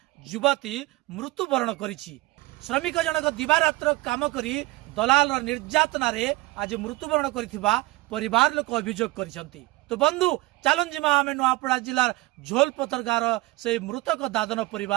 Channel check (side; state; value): left; quieter; 21.0 dB